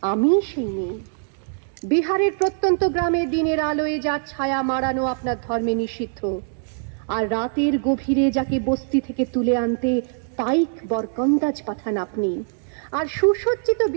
আমি সেই মেয়ে। বিহারের প্রত্যন্ত গ্রামে দিনের আলোয় যার ছায়া মাড়ানো আপনার ধর্মে নিষিদ্ধ, আর রাতের গভীরে যাকে বস্তি থেকে তুলে আনতে পাইক বরকন্দাজ পাঠান আপনি, আর সুসজ্জিত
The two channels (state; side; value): silent; left; digital silence